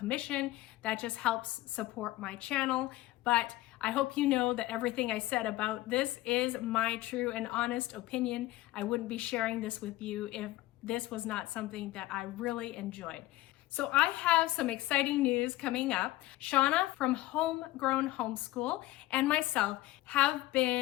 that just helps support my channel. But I hope you know that everything I said about this is my true and honest opinion. I wouldn't be sharing this with you if this was not something that I really enjoyed. So I have some exciting news coming up. Shauna from Homegrown Homeschool and myself have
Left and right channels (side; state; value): right; quieter; 17.5 dB